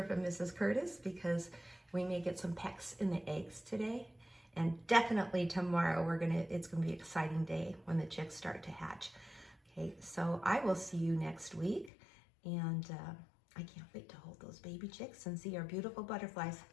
from Mrs. Curtis, because we may get some pecks in the eggs today. And definitely tomorrow it's gonna be an exciting day when the chicks start to hatch. Okay, so I will see you next week, and I can't wait to hold those baby chicks and see our beautiful butterflies.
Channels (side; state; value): right; drops out; at 11.9 s